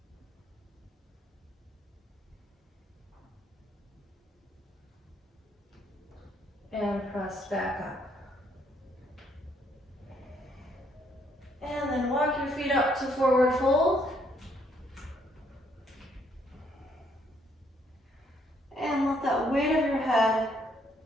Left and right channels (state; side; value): normal; both; correlation 0.69